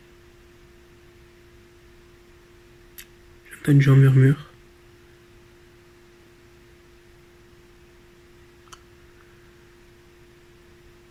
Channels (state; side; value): identical; both; correlation 1.00